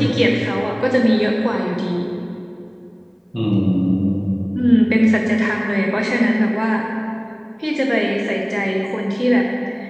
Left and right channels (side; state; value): both; identical; correlation 1.00